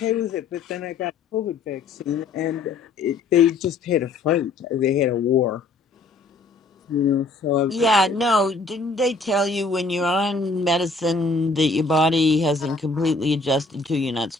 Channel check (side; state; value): right; quieter; 3.6 dB